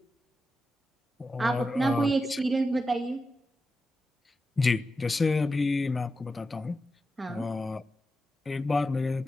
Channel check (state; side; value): normal; both; correlation 0.90